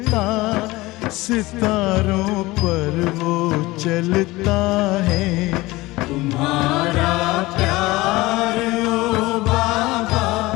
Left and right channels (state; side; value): quieter; right; 20.2 dB